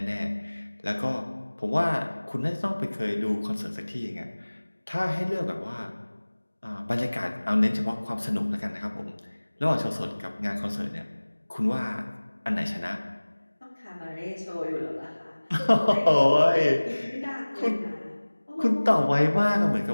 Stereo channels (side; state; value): both; inverted; correlation -1.00